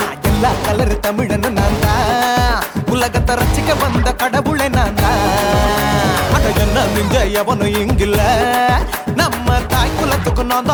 எல்லா கலர் தமிழன்னு நான் தான் உலகத்தை ரசிக்க வந்த கடவுளை நான் தான். அட என்ன மிஞ்ச எவனும் இங்கில்ல நம்ம தாய் குலத்துக்கு நான்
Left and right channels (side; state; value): both; identical; correlation 1.00